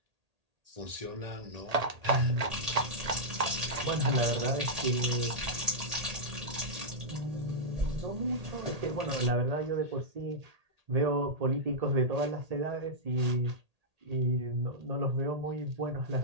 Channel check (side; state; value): left; late; 1.8 ms